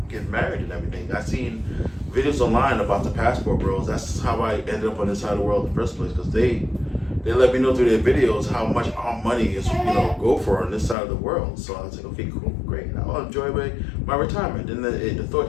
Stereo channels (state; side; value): drops out; right; at 11.0 s